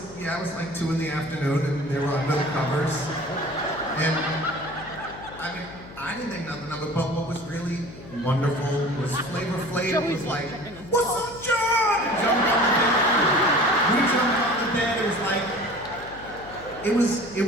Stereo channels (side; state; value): left; noise; hum, 17 dB below the sound